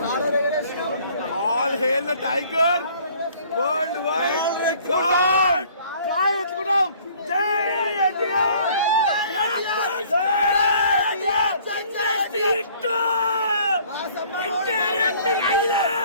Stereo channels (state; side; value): inverted; both; correlation -0.56